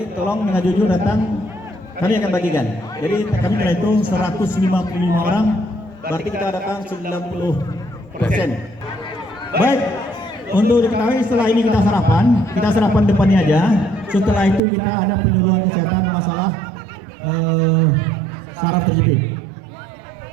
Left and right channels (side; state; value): left; drops out; at 14.6 s